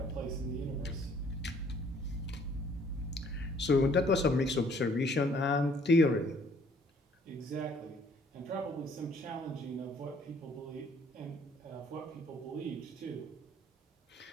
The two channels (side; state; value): both; normal; correlation 0.60